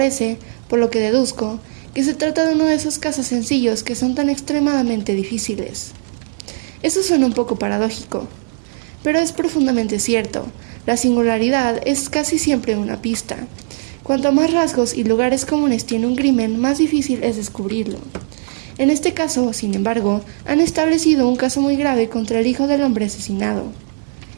por lo que deduzco, que se trata de uno de esos casos sencillos que son tan extremadamente difíciles». Eso suena un poco paradójico, pero es profundamente cierto. La singularidad es casi siempre una pista. Cuanto más rasgos y lugares comunes tiene un crimen, más difícil es descubrirlo. En este caso, sin embargo, han establecido un caso muy grave contra el hijo del hombre asesinado.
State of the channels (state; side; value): silent; left; 67 dB below the other